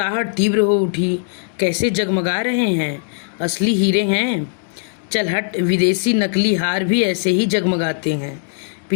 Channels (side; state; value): right; silent; digital silence